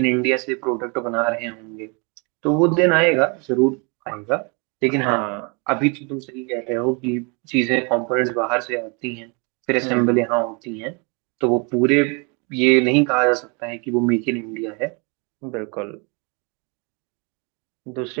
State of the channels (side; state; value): left; quieter; 32.7 dB